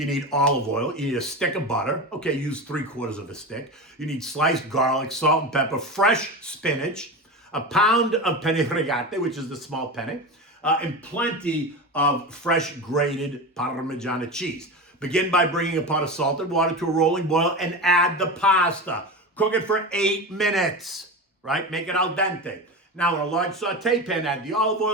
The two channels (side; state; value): both; normal; correlation 0.24